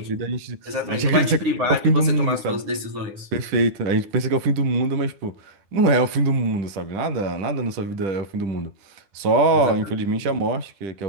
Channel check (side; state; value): left; late; 9.6 ms